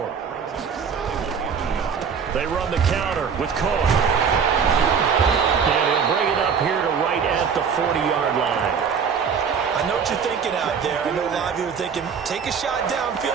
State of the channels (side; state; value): left; quieter; 6.5 dB